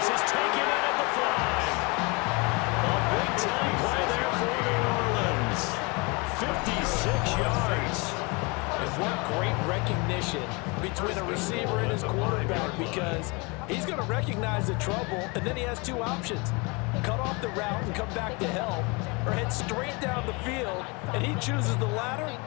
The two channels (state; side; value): quieter; right; 28.2 dB